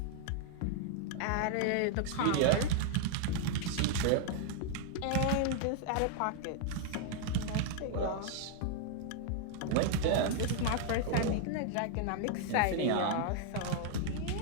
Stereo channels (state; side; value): different; both; correlation 0.00